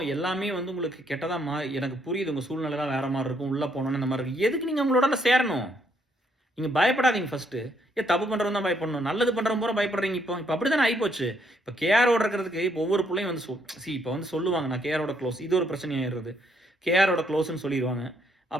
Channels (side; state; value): both; normal; correlation 0.72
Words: எல்லாமே வந்து உங்களுக்கு கெட்டதா எனக்கு புரியுது உங்க சூழ்நிலைலாம் வேற மாரி இருக்கும். உள்ள போனோனே இந்த மாரி இருக்கு. எதுக்கு நீங்க அவங்களோட சேரணும்? நீங்க பயப்படாதீங்க ஃபர்ஸ்ட்டு. தப்பு பண்றவன் தான் பயப்படணும். நல்லது பண்றவன் பூரா பயப்படுறீங்க இப்போ. இப்ப அப்படித்தானே ஆயிப்போச்சு. இப்ப கேஆரோட இருக்கிறதுக்கு இப்போ ஒவ்வொரு புள்ளையும் வந்து இப்ப வந்து சொல்லுவாங்க, நான் கேஆரோட க்ளோஸ். இது ஒரு பிரச்சனை ஆயிடுது. கேஆரோட க்ளோஸ்ன்னு சொல்லிருவாங்க.